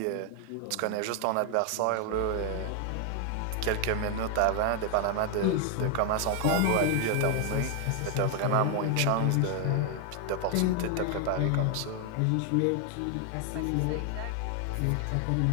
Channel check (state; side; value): different; both; correlation 0.01